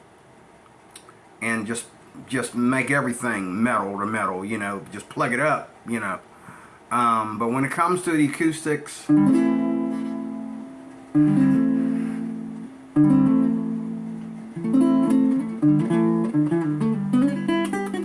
just make everything metal to metal, you know, just plug it up, you know. But when it comes to the acoustics,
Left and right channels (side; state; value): both; identical; correlation 1.00